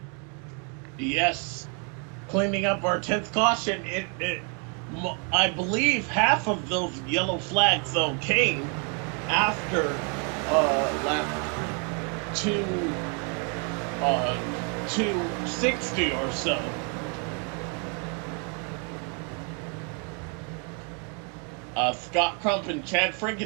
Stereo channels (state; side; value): quieter; left; 37.4 dB